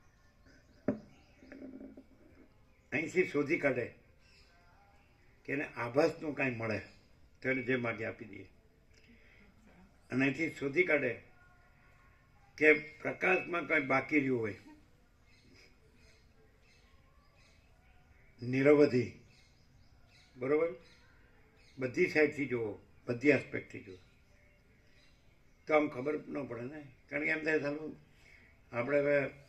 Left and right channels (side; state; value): both; identical; correlation 1.00